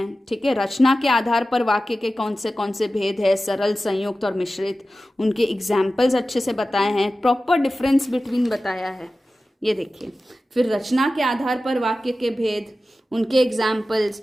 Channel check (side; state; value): both; normal; correlation 0.95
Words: ठीक है। रचना के आधार पर वाक्य के कौन से भेद है, सरल, संयुक्त और मिश्रित, उनके एग्जाम्पल्स अच्छे से बताए हैं, प्रॉपर डिफरेंस बिटवीन बताया है, ये देखिए। फिर रचना के आधार पर वाक्य के भेद, उनके एग्जाम्पल्स,